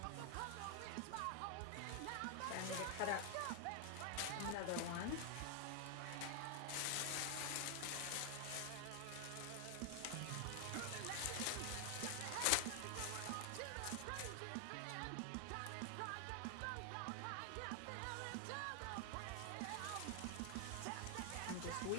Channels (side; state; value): both; different; correlation 0.00